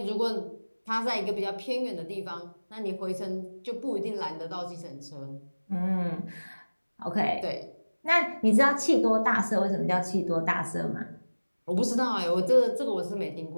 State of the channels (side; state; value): both; inverted; correlation -1.00